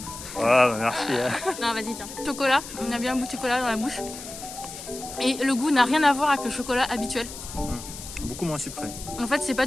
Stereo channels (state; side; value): noise; left; hiss, 12 dB below the sound